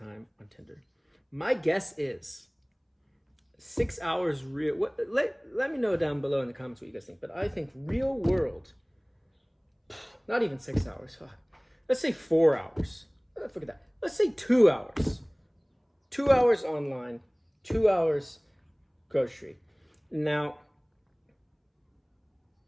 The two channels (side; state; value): both; identical; correlation 1.00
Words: on Tinder? My guess is 6 hours real. Let me know down below in the comments what you guys think. But I think real world, not even 6 hours. Let's say 4 hours. Forget that. Let's say 2 hours. 2 hours online, 2 hours grocery. Now,